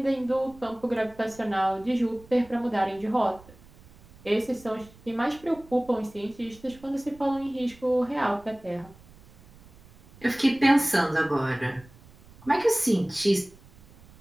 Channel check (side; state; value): right; noise; rumble, 24 dB below the sound